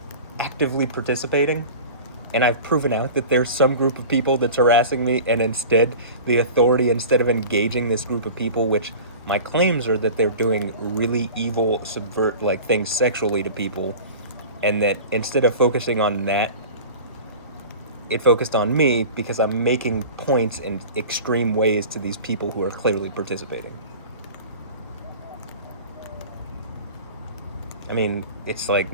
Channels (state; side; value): inverted; both; correlation -0.37